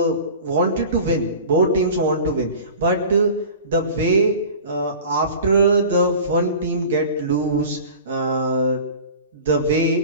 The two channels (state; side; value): inverted; both; correlation -0.39